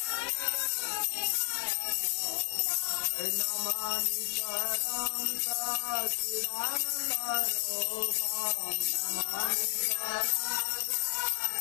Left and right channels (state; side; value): silent; right; digital silence